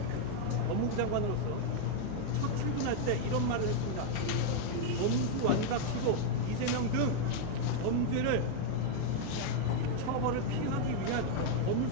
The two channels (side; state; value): both; different; correlation 0.00